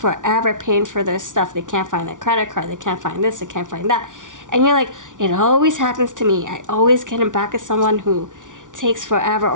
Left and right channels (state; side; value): late; left; 0.87 ms